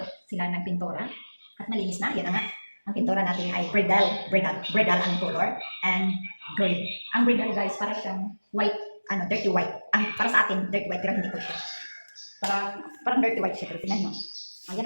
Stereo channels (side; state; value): both; inverted; correlation -1.00